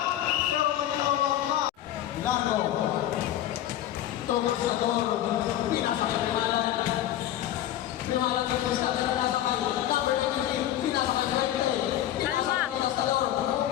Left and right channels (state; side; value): quieter; right; 12.4 dB